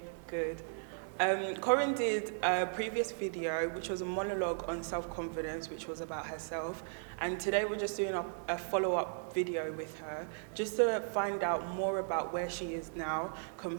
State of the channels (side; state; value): left; silent; digital silence